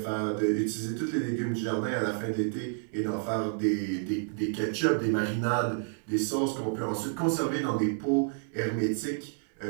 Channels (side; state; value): left; silent; digital silence